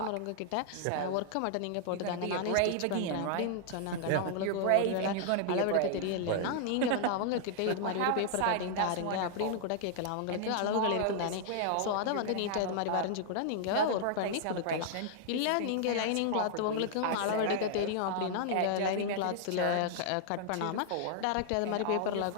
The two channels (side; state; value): both; different; correlation -0.01